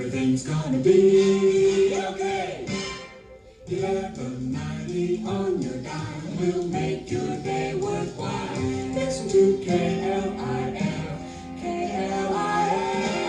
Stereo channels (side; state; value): both; identical; correlation 1.00